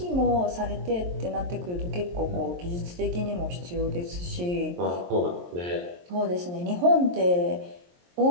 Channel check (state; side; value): late; left; 23 ms